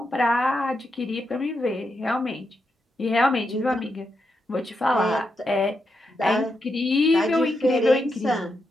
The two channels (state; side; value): normal; both; correlation 0.84